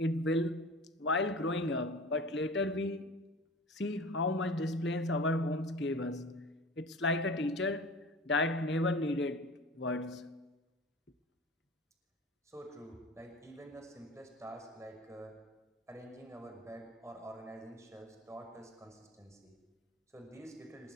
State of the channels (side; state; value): both; normal; correlation 0.38